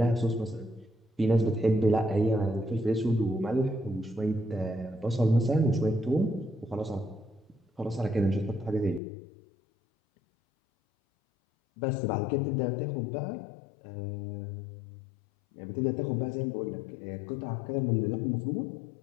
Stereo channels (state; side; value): drops out; right; at 9.0 s